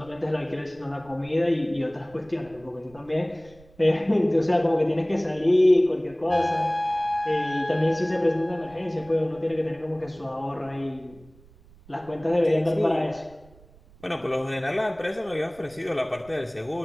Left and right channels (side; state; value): right; noise; rumble, 25 dB below the sound